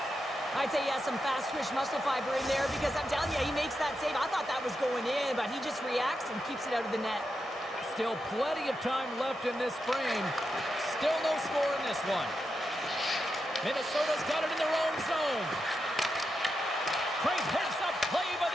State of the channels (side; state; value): both; normal; correlation 0.87